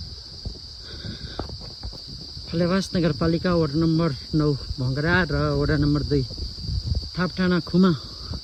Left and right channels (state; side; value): identical; both; correlation 1.00